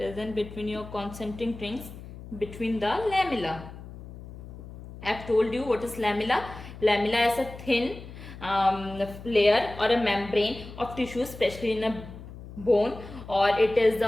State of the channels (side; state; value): left; noise; hum, 14 dB below the sound